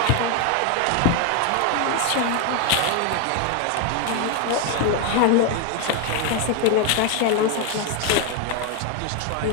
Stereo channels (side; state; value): both; different; correlation 0.01